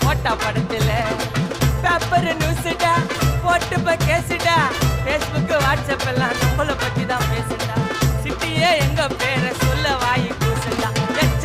போட்டா படத்துல. பேப்பர் நியூஸ்டா போட்டு கேசுடா, பேஸ்புக் வாட்ஸ்அப் எல்லாம் நம்மளை பத்தி தான் பேசுடா. சிட்டியே எங்க பேரை சொல்ல வாயி கூசுடா.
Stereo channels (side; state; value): both; identical; correlation 1.00